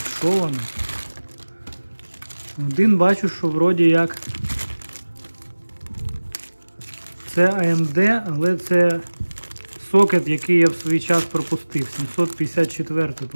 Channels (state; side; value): inverted; both; correlation -1.00